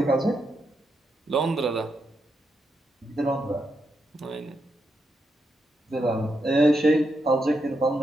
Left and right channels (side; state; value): both; normal; correlation 0.83